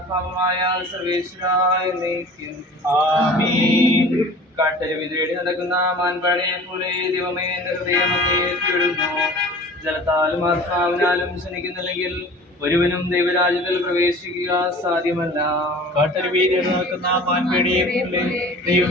സർവേശ്വരായ നയിക്കും. ആമീൻ. കാട്ടരുവി തേടി നടക്കുന്ന മാൻപാടിയെ പോലെ ദൈവമേ എന്റെ ഹൃദയം അങ്ങേറ്റിവിടുന്നു. ജലത്താലും ആത്മാവിനാലും ശനിക്കുന്നില്ലെങ്കിൽ ഒരുവനും ദൈവരാജ്യത്തിൽ പ്രവേശിക്കുക സാധ്യമല്ല. കാട്ടരുവി തേടി നടക്കുന്ന മാൻപാടിയെ പോലെ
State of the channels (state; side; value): normal; both; correlation 0.43